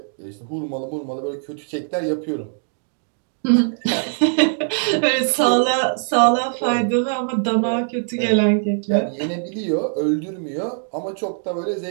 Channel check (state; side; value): silent; left; digital silence